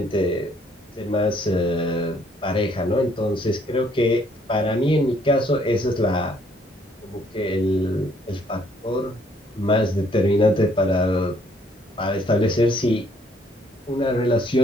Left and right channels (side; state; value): both; normal; correlation 0.65